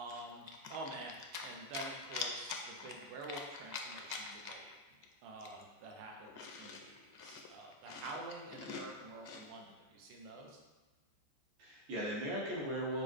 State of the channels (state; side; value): late; left; 14 ms